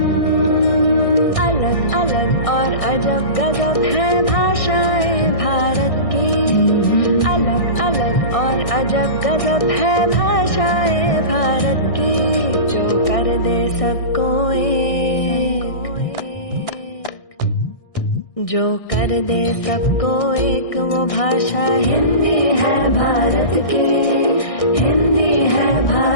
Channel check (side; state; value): right; late; 1.6 ms